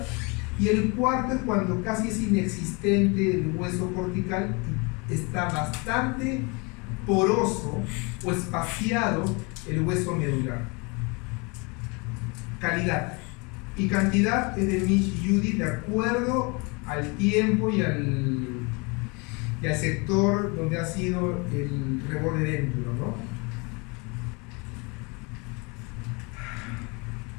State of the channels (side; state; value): right; quieter; 29.8 dB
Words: Y el cuarto es cuando casi es inexistente el hueso cortical y está bastante poroso o espaciado el hueso medular. Calidad y cantidad es de Mitch y Judy de acuerdo al tiempo y al sector donde ha sido el reborde dentro, ¿no?